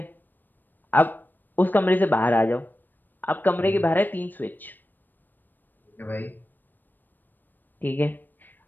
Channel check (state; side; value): late; right; 0.091 ms